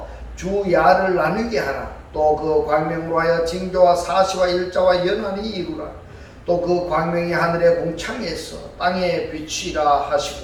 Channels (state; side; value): identical; both; correlation 1.00